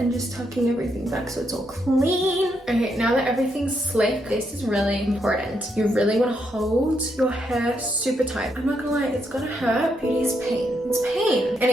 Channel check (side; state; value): both; normal; correlation 0.78